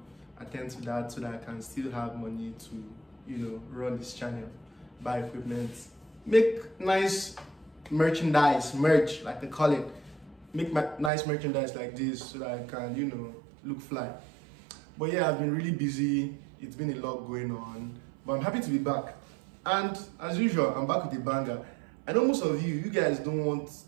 attend to that so that I can still have money to, run this channel, buy equipment, make nice merch, like they call it. Make nice merchandise like this so that I can, look fly. But yeah, I've been really busy. It's been a lot going on, but I'm happy to be back. And as usual, I'm back with a banger. I know most of you guys don't want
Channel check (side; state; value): left; drops out; at 11.1 s